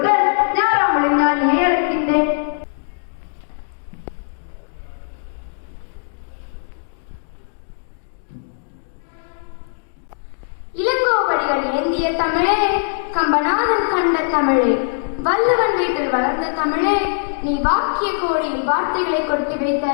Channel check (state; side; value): silent; right; digital silence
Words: ஞாராமலை நான் அழைக்கின்றேன். இளங்கோவடிகள் ஏந்திய தமிழே, கம்பநாதன் கண்ட தமிழே, வள்ளுவன் வீட்டில் வளர்ந்த தமிழே, நீ வாக்கிய கோடியில் வார்த்தைகளை கொட்டி வைத்த